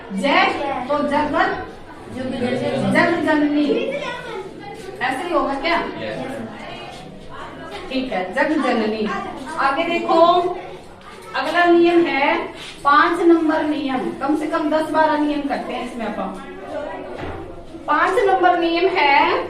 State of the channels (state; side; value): identical; both; correlation 1.00